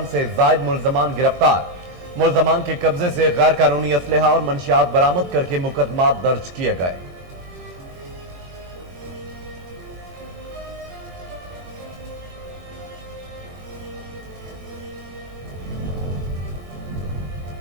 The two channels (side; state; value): left; late; 22 ms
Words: سے زائد ملزمان گرفتار۔ ملزمان کے قبضے سے غیر قانونی اسلحہ اور منشیات برآمد کر کے مقدمات درج کیے گئے۔